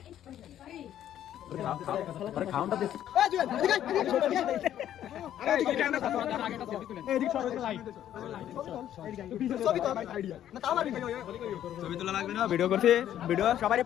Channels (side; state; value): right; quieter; 11.2 dB